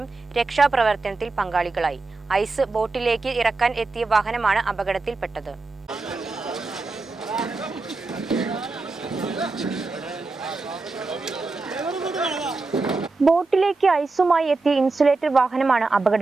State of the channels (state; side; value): quieter; left; 3.7 dB